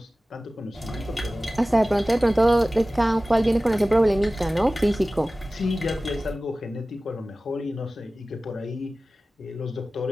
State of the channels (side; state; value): both; normal; correlation 0.97